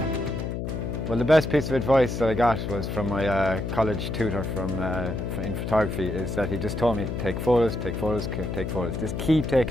Well, the best piece of advice that I got was from my college tutor in photography, is that he just told me to take photos, take photos, take photos. Just keep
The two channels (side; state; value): left; noise; hum, 4 dB below the sound